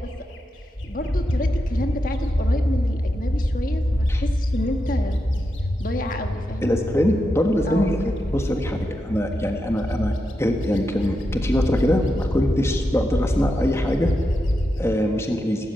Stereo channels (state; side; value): normal; both; correlation 0.87